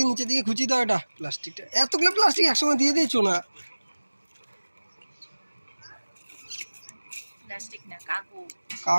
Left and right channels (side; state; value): both; inverted; correlation -1.00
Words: নিচে দিকে খুঁচি দাও, এটা প্লাস্টিকটা এতগুলো প্লাস্টিক একসঙ্গে দিয়ে দিয়েছো না? প্লাস্টিক না, কাগজ।